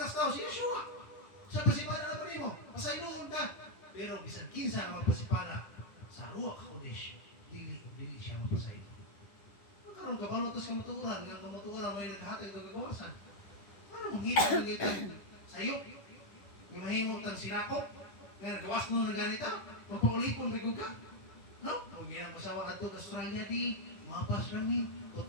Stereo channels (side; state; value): right; late; 10 ms